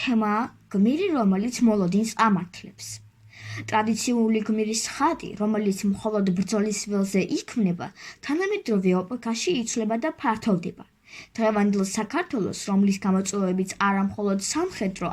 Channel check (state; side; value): identical; both; correlation 1.00